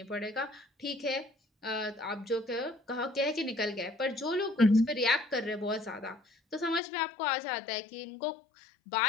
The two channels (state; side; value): drops out; right; at 6.8 s